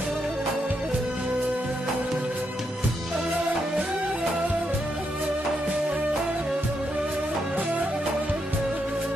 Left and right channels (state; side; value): normal; both; correlation 0.81